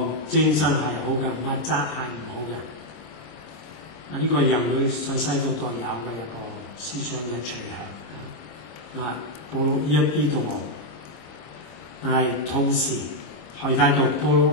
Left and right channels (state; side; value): late; right; 26 ms